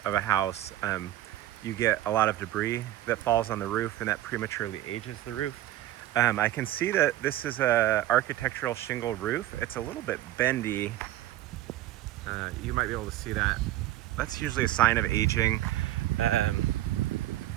of a house, you get a lot of debris that falls on the roof, and that prematurely ages the roof. I can see that this is a architectural shingle roof. It's a little bit bendy. You might be able to see that. That's usually a sign of aging. Um,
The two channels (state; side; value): quieter; left; 14.2 dB